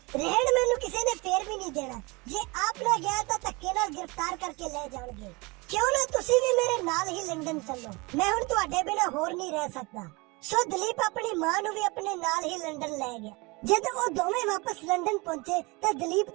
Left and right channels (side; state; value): left; quieter; 26.1 dB